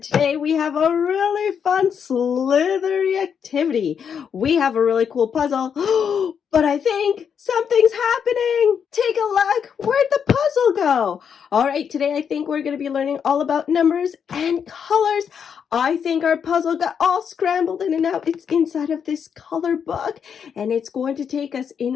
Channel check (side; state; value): right; quieter; 7.3 dB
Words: Today we have a really fun slithery activity. We have a really cool puzzle, but I think something's happening. Take a look. Where'd the puzzle go? All right, today I think we're going to be learning all about numbers and colors. I think our puzzle got all scrambled in and out. It's inside of this color book, and it's going to take us